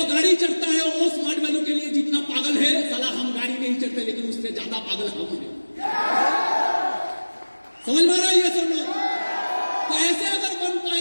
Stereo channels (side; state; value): both; inverted; correlation -1.00